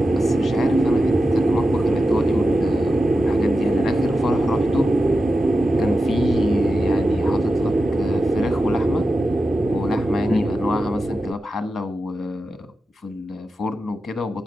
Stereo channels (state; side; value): normal; both; correlation 0.91